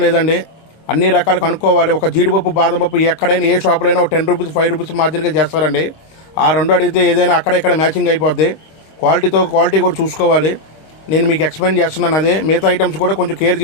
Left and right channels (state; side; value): late; right; 26 ms